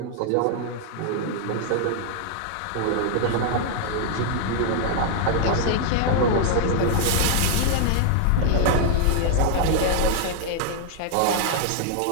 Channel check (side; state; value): both; different; correlation 0.00